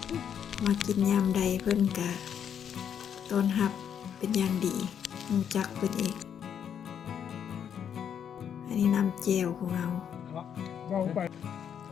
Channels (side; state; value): right; quieter; 8.4 dB